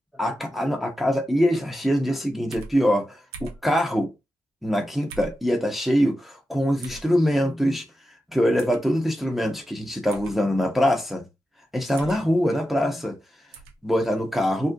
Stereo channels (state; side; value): normal; both; correlation 0.90